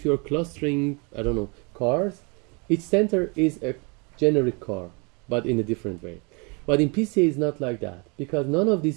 you're clustering, I don't know, cars, each center is a generic car, but in a different way. But in PCA it's not like that, because none of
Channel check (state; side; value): quieter; left; 31.5 dB